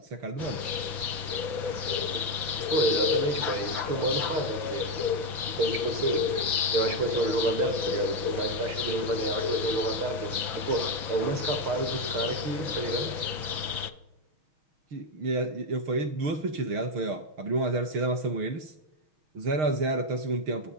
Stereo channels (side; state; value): left; late; 6.0 ms